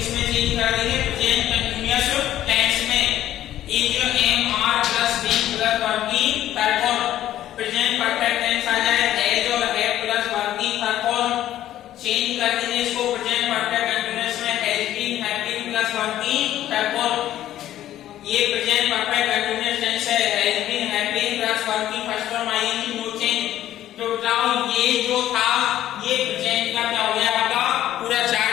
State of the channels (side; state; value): right; quieter; 12.6 dB